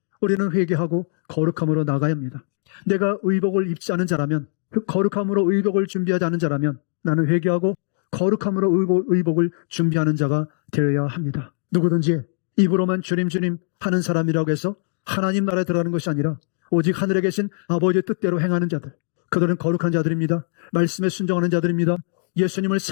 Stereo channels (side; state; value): right; silent; digital silence